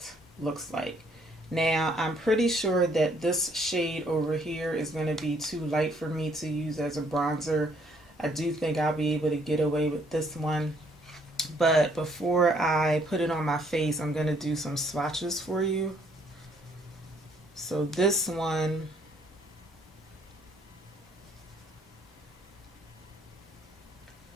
looks like. Now, I'm pretty sure that this shade over here is going to be too light for me to use as a bronzer. I do think I'll be able to get away with this one. But before I put it on my face, I'm going to do some swatches for you. So this one,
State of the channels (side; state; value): both; normal; correlation 0.66